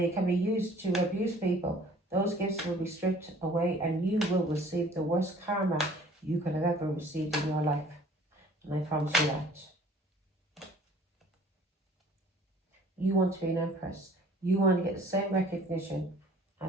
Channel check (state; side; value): normal; both; correlation 0.52